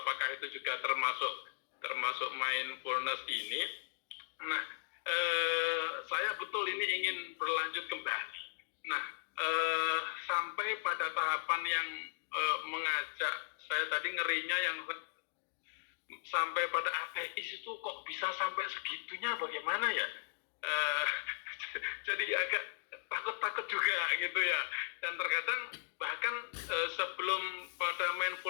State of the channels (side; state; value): right; silent; digital silence